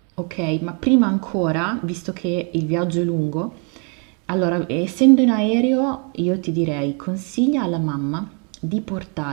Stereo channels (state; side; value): quieter; left; 37.9 dB